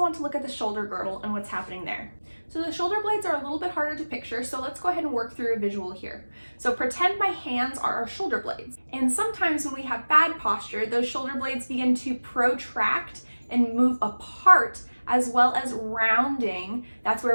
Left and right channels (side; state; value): both; inverted; correlation -1.00